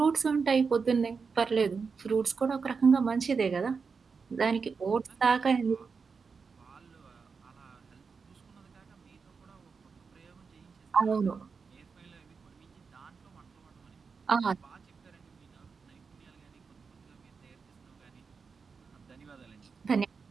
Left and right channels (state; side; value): quieter; left; 5.2 dB